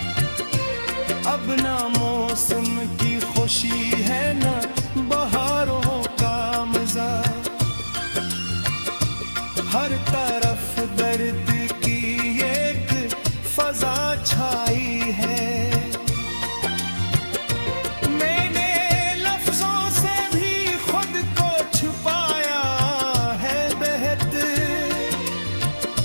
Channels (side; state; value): both; inverted; correlation -1.00